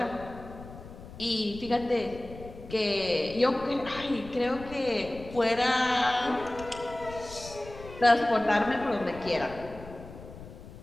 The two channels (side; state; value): left; noise; rumble, 15 dB below the sound